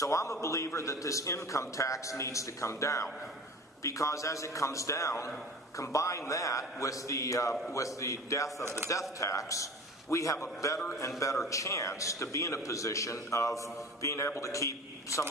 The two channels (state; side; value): normal; both; correlation 0.39